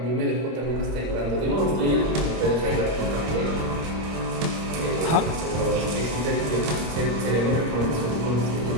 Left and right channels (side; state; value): left; late; 26 ms